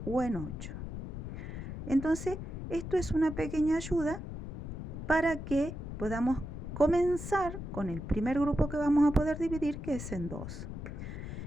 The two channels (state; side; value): noise; left; rumble, 7 dB below the sound